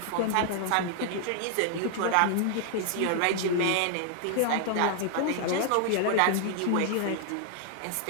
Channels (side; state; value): both; different; correlation 0.00